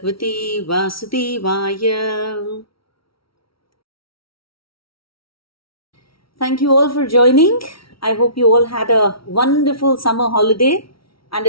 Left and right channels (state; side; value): late; right; 0.75 ms